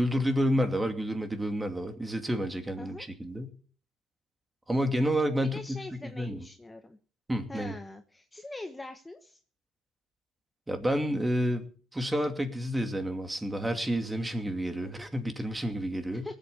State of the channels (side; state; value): both; normal; correlation 0.88